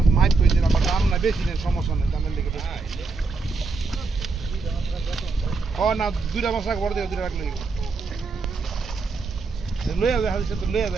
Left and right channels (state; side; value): quieter; left; 4.1 dB